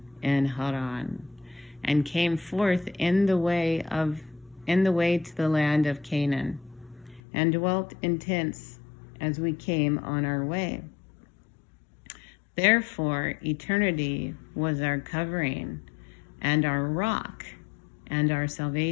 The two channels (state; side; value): drops out; right; at 7.2 s